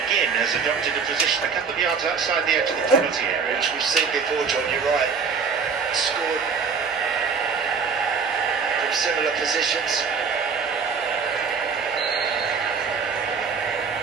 has adopted a position a couple of yards outside the edge of the penalty area. Which we've seen before, John, you're right. Scored from similar positions.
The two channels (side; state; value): left; quieter; 5.6 dB